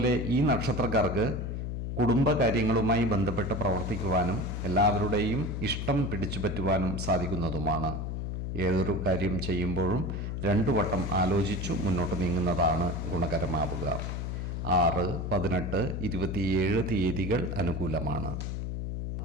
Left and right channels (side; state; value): left; noise; hum, 3 dB below the sound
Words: ഈ നക്ഷത്രക്കാർക്ക് കുടുംബകാര്യങ്ങളുമായി ബന്ധപ്പെട്ട് പ്രവർത്തിക്കുവാനും എല്ലാവരുടെയും ഇഷ്ടം പിടിച്ചുപറ്റുവാനും സാധിക്കുന്നതുമാണ്. ഏതൊരു കാര്യം ചെയ്യുമ്പോഴും 2 വട്ടം ആലോചിച്ചു മുന്നോട്ട് നീങ്ങുന്നതാണ് ഗുണകരമാവുക. 6, 18, 27 തീയതികൾ അനുകൂലമാണ്.